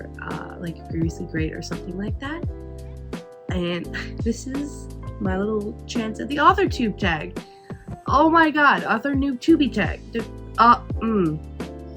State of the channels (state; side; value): identical; both; correlation 1.00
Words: like Previously Great or something like that. And this is my little chance at the author tube tag. Oh my god, author noob tubey tag. This